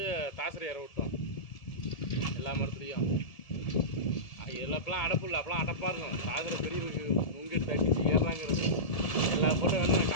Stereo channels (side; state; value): right; late; 1.7 ms